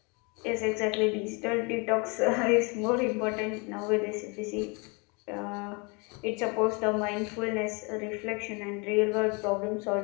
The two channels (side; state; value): right; quieter; 30.8 dB